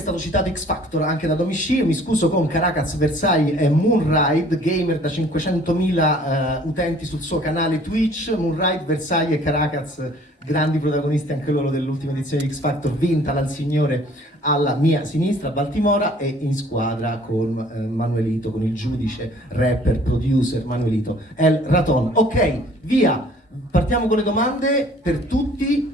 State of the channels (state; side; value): normal; both; correlation 0.54